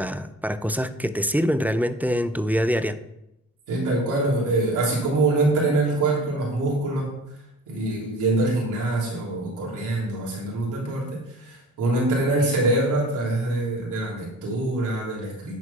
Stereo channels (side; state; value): both; normal; correlation 0.43